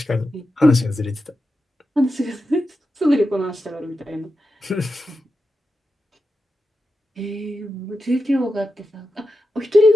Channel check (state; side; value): normal; both; correlation 0.90